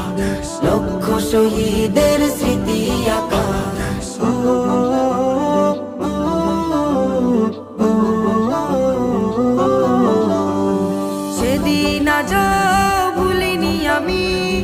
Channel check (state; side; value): identical; both; correlation 1.00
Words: লক্ষ শহীদের স্মৃতি আঁকা। সেদিন আজ ভুলিনি আমি